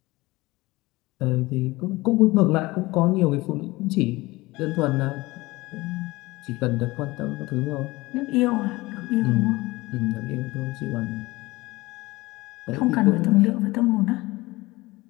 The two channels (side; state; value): right; quieter; 20.9 dB